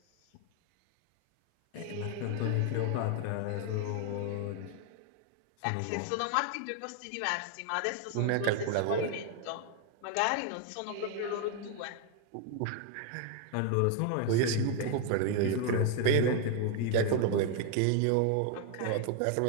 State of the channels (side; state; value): both; different; correlation 0.00